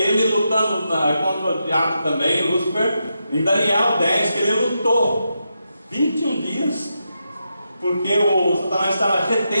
lutando contra o diabo também, Lúcifer, em Daniel 10, que ele lutou 21 dias, porque o Satanás estava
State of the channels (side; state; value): both; inverted; correlation -0.85